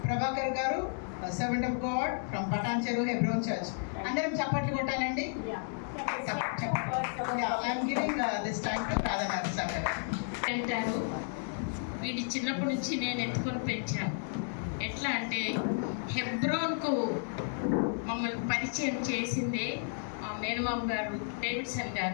Prabhakar garu, servant of God from Patancheru Hebron Church. Andaram chappatlu kottalanడి. Yeah, I am giving this time to Radha Mathis Akka. అంటారు వీడి చిన్నప్పటి నుంచి నేను ఎత్తుకొని పెంచాను. ఎట్లా అంటే హెబ్రోన్కు మమ్మల్ని పరిచయం చేసిందే మా మేనమామ గారు డేవిడ్సన్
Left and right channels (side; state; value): right; silent; digital silence